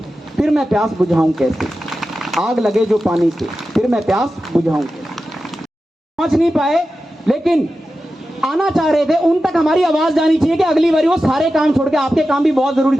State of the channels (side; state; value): both; normal; correlation 0.92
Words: फिर मैं प्यास बुझाऊं कैसे। आग लगे जो पानी से फिर मैं प्यास बुझाऊं कैसे। पहुंच नहीं पाए लेकिन आना चाह रहे थे, उन तक हमारी आवाज जानी चाहिए कि अगली बारी वो सारे काम छोड़ के, आपके काम भी बहुत जरूरी